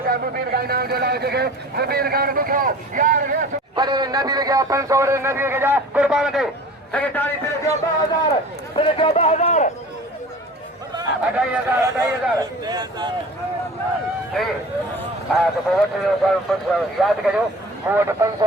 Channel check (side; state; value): both; normal; correlation 0.41